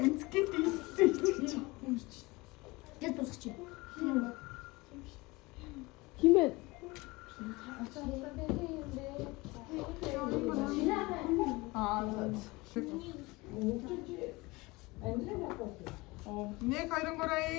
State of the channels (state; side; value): quieter; right; 23.1 dB